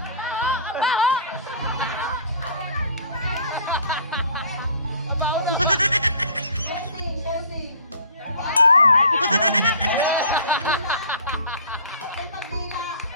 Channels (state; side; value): inverted; both; correlation -0.47